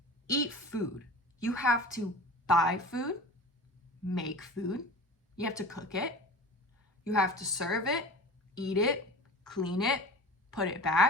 eat food, you have to buy food, make food, you have to cook it, you have to serve it, eat it, clean it, put it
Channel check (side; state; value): both; normal; correlation 0.36